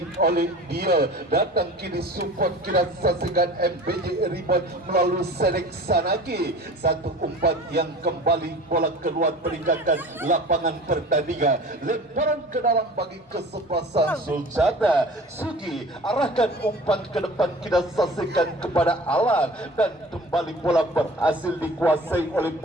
oleh dia. Datang kini support, kita saksikan MBJ Ribon melalui Sedek Sanaki. Satu umpan yang kembali bola keluar meninggalkan lapangan pertandingan. Lemparan ke dalam bagi kesebelasan Sulcata. Sugi arahkan umpan ke depan, kita saksikan kepada Alan, dan kembali bola berhasil dikuasai oleh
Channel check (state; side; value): normal; both; correlation 0.41